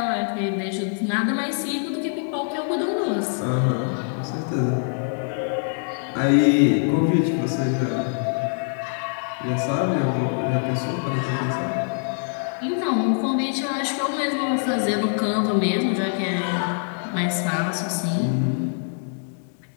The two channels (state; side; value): silent; right; 63 dB below the other